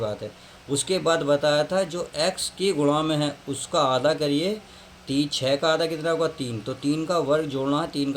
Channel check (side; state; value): both; identical; correlation 1.00